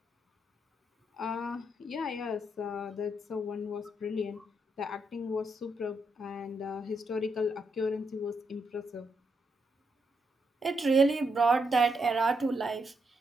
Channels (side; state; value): both; normal; correlation 0.79